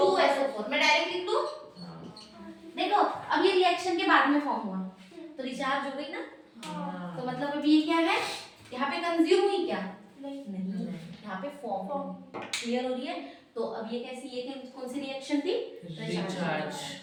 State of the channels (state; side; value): identical; both; correlation 1.00